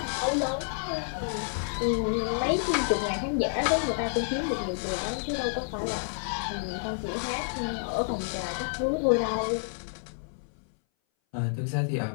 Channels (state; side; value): silent; right; 58 dB below the other